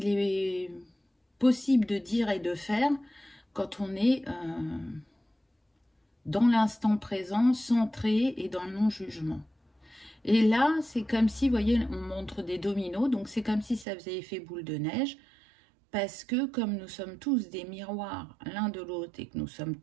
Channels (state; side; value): drops out; left; at 13.9 s